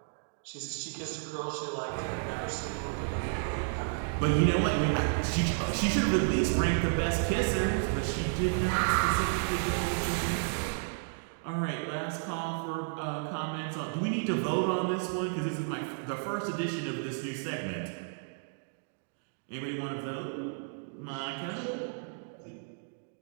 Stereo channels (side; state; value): left; silent; digital silence